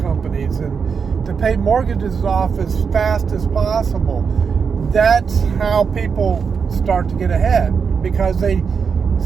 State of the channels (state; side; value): quieter; left; 6.0 dB